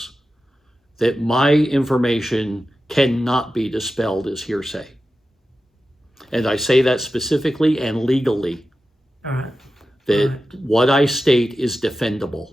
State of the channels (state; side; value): normal; both; correlation 0.92